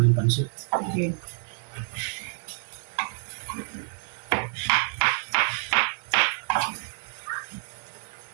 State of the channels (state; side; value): silent; left; 60 dB below the other